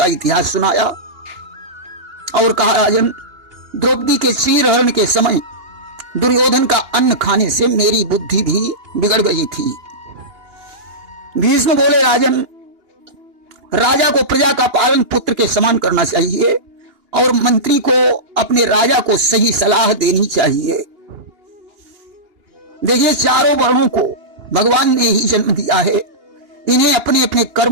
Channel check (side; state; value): left; late; 2.8 ms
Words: इतिहास सुनाया और कहा, राजन, द्रौपदी के चीरहरण के समय दुर्योधन का अन्न खाने से मेरी बुद्धि भी बिगड़ गई थी। भीष्म बोले, राजन, राजा को प्रजा का पालन पुत्र के समान करना चाहिए और मंत्री को अपने राजा को सही सलाह देनी चाहिए। देखिए, चारों वर्णों को भगवान ने ही जन्म दिया है। इन्हें अपने अपने